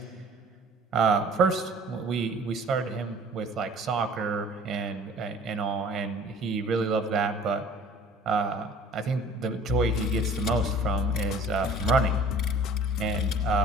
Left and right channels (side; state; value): both; normal; correlation 0.49